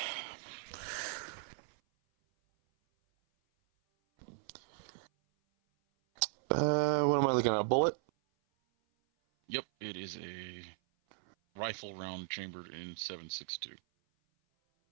What am I looking at? A bullet? Yep, it is a rifle round chambered in 7.62.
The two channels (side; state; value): left; silent; 53 dB below the other